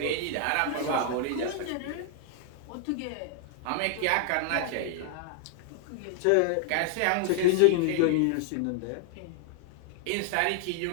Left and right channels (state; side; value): different; both; correlation 0.00